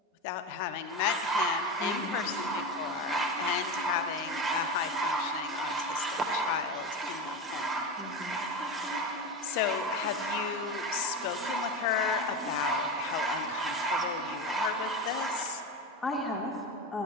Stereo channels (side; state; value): both; normal; correlation 0.22